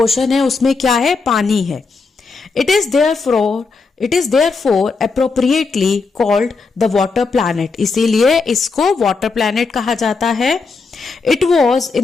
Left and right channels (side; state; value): right; quieter; 4.4 dB